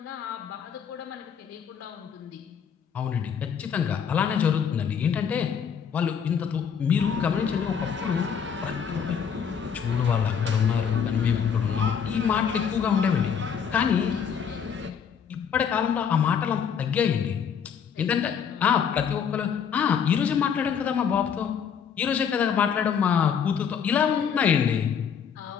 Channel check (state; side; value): quieter; right; 7.4 dB